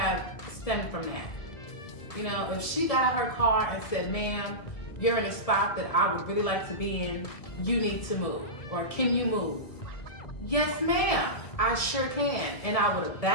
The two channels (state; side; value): late; right; 1.7 ms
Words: stemmed from that. You know, if she got out her car and said, ma'am, you're in a spot that I would really like to be in, you need to move, or can you move? Yes, ma'am, I sure can. And I would have